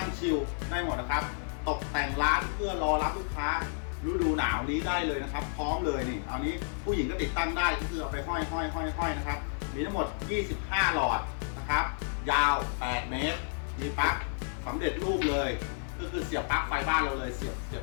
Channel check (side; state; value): right; silent; 57 dB below the other